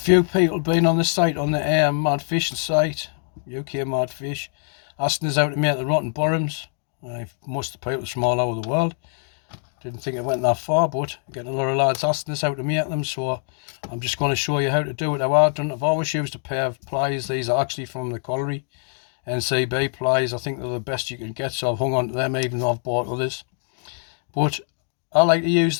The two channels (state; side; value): silent; right; 55 dB below the other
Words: people been on the site, on the Mad Fishing site, UK Mad Fish, asking us how to make the rotten bottoms. Most of the people from all over the world. Didn't think it went that far, but getting a lot of lads asking us how to make them, so I'm just going to show you how to do it how I've done. I've always used a pair of pliers. These are actually from the colliery, NCB pliers. I think they're the best you can get, so I've hung on to them even though I've bought others. But I like to use